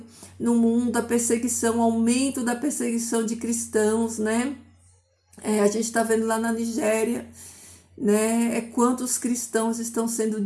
no mundo, a perseguição, o aumento da perseguição de cristãos, né? A gente está vendo lá na Nigéria, né? Quantos cristãos estão sendo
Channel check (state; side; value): identical; both; correlation 1.00